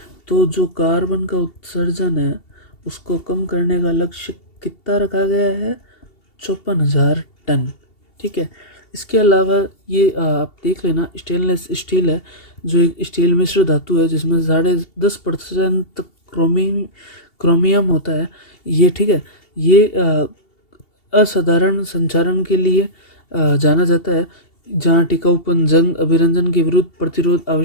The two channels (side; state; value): right; late; 2.7 ms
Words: तो जो कार्बन का उत्सर्जन है उसको कम करने का लक्ष्य कितना रखा गया है? 54,000 टन। ठीक है। इसके अलावा ये आप देख लेना, स्टेनलेस स्टील है जो एक स्टील मिश्र धातु है जिसमें 10.5% क्रोमियम होता है ये। ठीक है। ये असाधारण संचारण के लिए जाना जाता है, जहाँ टिकाऊपन, जंग अभिरंजन के विरुद्ध प्रतिरोध